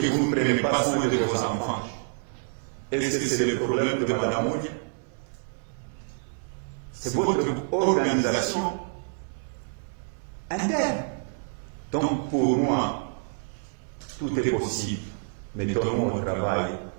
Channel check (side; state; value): left; silent; 59 dB below the other